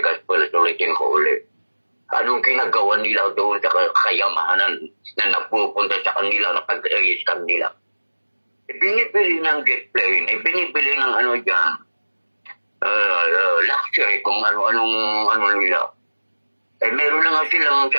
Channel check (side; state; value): both; inverted; correlation -1.00